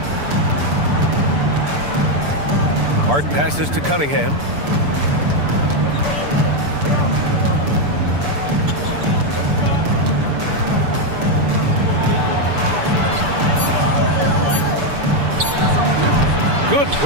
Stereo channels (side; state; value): left; late; 6.9 ms